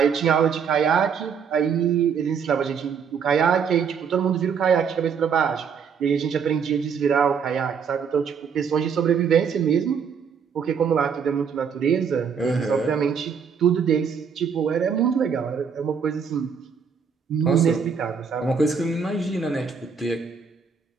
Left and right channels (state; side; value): quieter; left; 6.5 dB